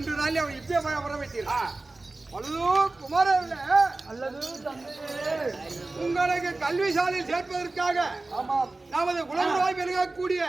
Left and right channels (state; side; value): quieter; left; 3.2 dB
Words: நாளில் அவன் இப்பயே வர வைத்தீர்கள். குமாரல்ல அல்லது உங்களுக்கு கல்வி சாலையில் சேர்ப்பதற்காக நமது குலகுருவாய் விளங்கக்கூடிய